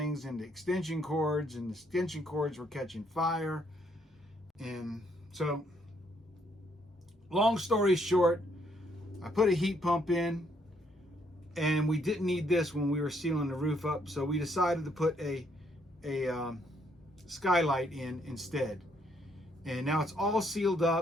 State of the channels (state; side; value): normal; both; correlation 0.71